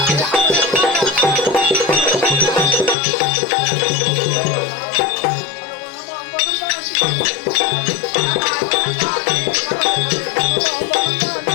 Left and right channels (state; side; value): drops out; right; at 3.0 s